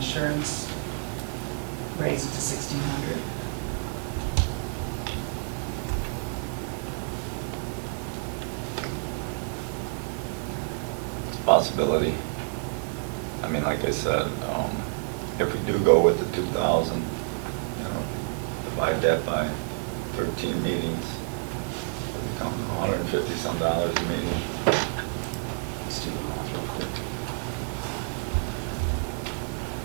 raise it to 1,600? Possibility. I mean, like I said, if we do go with the 2,000, you know, divide that by 13 meetings, it'll become $150 some a meeting. Let's do the math real quick.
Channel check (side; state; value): left; silent; 59 dB below the other